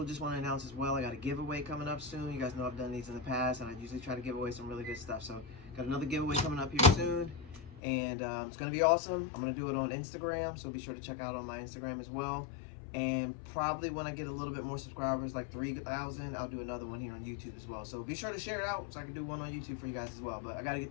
just want to announce as well, I got a giveaway coming up soon. You guys know I've done these in the past, and I usually try to give away some really good stuff. So, got another giveaway coming up here soon, and it's going to be awesome. I'm going to do it on Instagram, so be sure to check out on my Instagram as well. And probably when I get a little bit more subscribers, like 3,000, I'll do another one here on YouTube as well. So be sure to share it out so I can do one on YouTube for you guys as well. But I got to get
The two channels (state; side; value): drops out; right; at 7.8 s